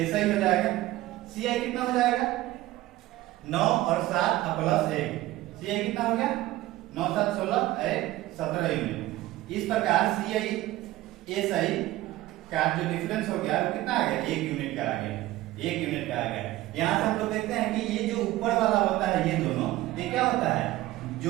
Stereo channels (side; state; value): left; quieter; 16.6 dB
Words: हो जाएगा। सीआई कितना हो जाएगा? 9 और 7 + 1, सीआई कितना हो गया? 9 7 16 17 यूनिट। इस प्रकार सीआई एसआई का जो डिफरेंस हो गया वो कितना आ गया? 1 यूनिट का आ गया। 1 यूनिट का आ गया। यहाँ से हम लोग देखते हैं कि ये जो ऊपर वाला होता है ये दोनों, ये क्या होता है?